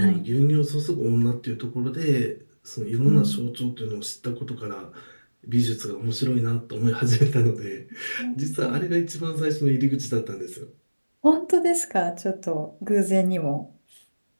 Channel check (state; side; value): inverted; both; correlation -1.00